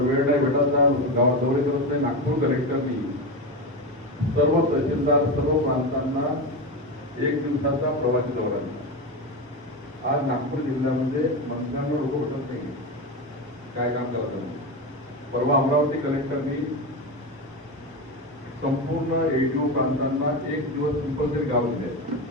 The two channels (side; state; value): both; normal; correlation 0.18